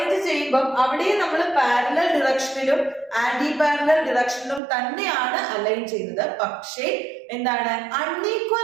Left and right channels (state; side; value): drops out; left; at 4.6 s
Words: ചെയ്യുമ്പോൾ അവിടെയും നമ്മൾ പാരലൽ ഡിറക്ഷനിലും ആന്റി പാരലൽ ഡിറക്ഷനിലും തന്നെയാണ് അലൈൻ ചെയ്യുന്നത്. പക്ഷേ എന്താണ്,